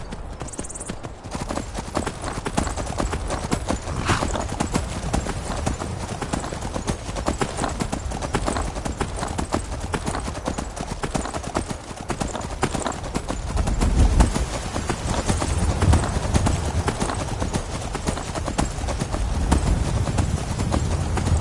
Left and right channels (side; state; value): both; identical; correlation 1.00